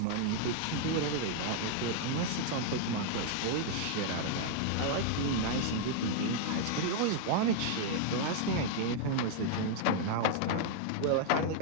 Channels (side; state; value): both; different; correlation -0.01